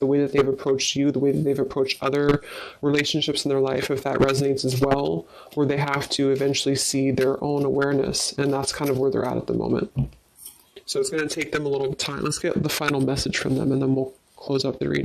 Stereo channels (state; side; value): identical; both; correlation 1.00